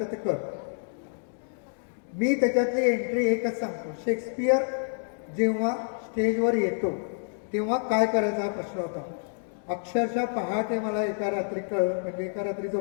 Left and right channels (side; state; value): right; silent; digital silence